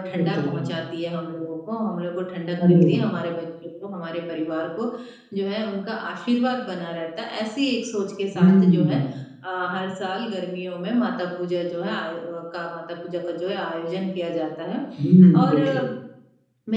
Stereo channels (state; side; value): identical; both; correlation 1.00